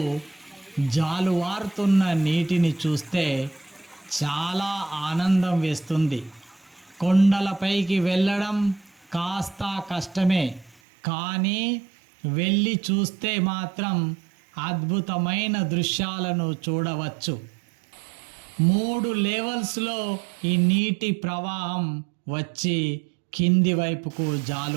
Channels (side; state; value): left; drops out; at 10.8 s